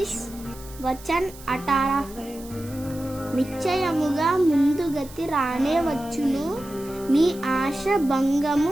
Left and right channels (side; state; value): right; noise; hiss, 19 dB below the sound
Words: వచన్ 18. నిశ్చయముగా ముందుగతి రానే వచ్చును, నీ ఆశ